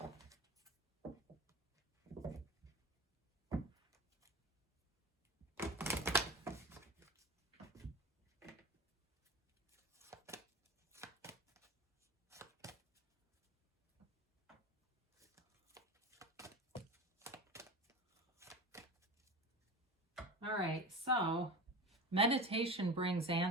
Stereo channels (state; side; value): normal; both; correlation 0.28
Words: All right, so meditation brings